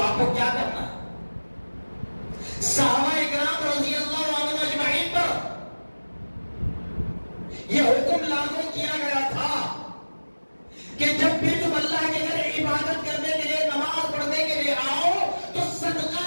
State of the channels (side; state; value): both; inverted; correlation -1.00